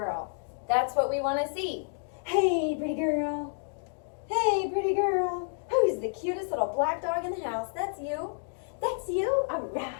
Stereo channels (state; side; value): silent; right; digital silence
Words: That's what we want to see. Hey, pretty girl. Hey, pretty girl. Who's the cutest little black dog in the house? That's you. That's you? All